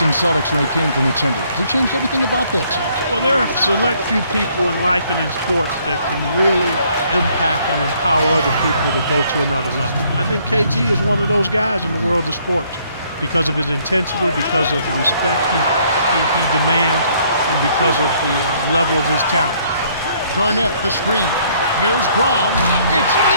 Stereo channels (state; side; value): inverted; both; correlation -0.65